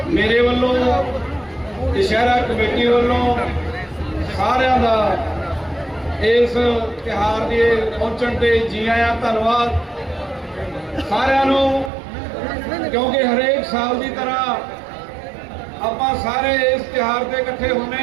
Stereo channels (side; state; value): left; drops out; at 11.9 s